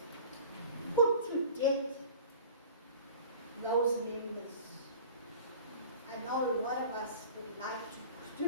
Put to death those members. I know a lot of us would like to put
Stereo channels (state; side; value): inverted; both; correlation -0.43